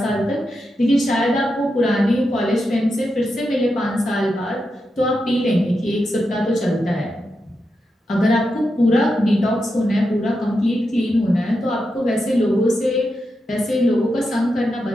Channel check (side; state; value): both; normal; correlation 0.87